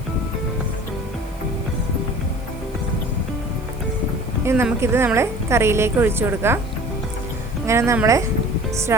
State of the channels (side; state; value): left; noise; hiss, 26 dB below the sound